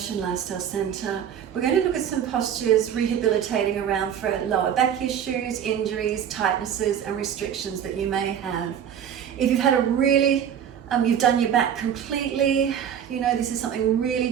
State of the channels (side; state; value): left; quieter; 8.9 dB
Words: Lifestyle Centre. We're going to look at some postures rehabilitating around for lower back issues, injuries, tightnesses and restrictions that you may have. If you've had a really, you've done your back completely, this is something really